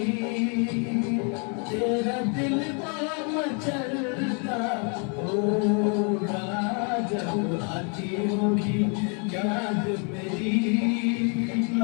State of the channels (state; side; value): quieter; right; 37.5 dB